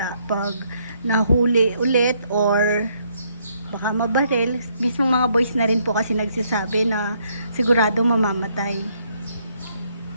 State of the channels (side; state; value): both; inverted; correlation -0.71